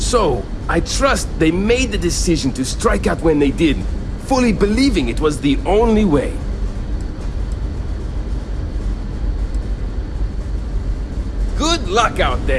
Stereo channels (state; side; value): identical; both; correlation 1.00